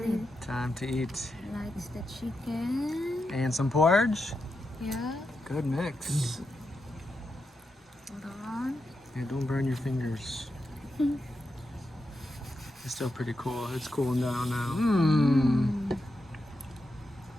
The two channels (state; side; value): normal; both; correlation 0.87